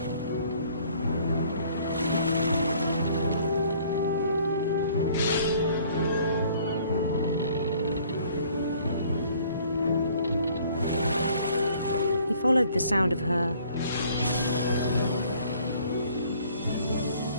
He followed the sound of her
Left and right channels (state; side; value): inverted; both; correlation -0.58